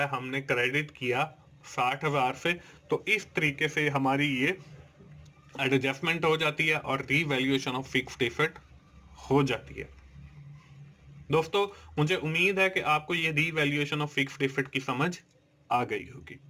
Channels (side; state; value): both; identical; correlation 1.00